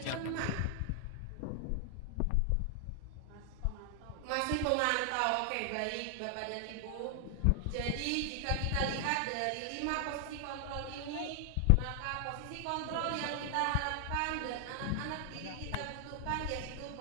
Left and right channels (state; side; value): different; both; correlation 0.00